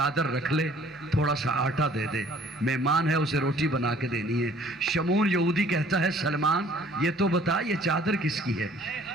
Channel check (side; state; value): both; normal; correlation 0.56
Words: رکھ لے، تھوڑا سا آٹا دے دے، مہمان ہے اسے روٹی بنا کے دینی ہے۔ شمون یہودی کہتا ہے سلمان یہ تو بتا یہ چادر کس کی ہے؟